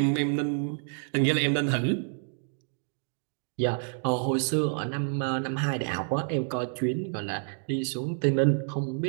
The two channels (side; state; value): left; silent; digital silence